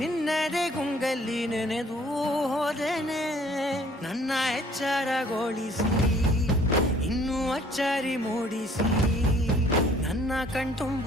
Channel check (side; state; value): both; normal; correlation 0.58